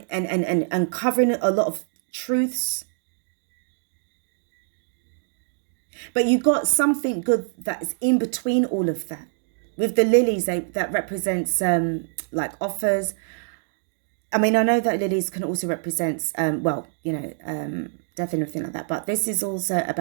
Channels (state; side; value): silent; left; digital silence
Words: uncovering a lot of truths. But you got something good that's in between all of that. With the lilies, that represents like offers. I mean, I know that lilies can also represent, well, you know, death and everything like that. But this is also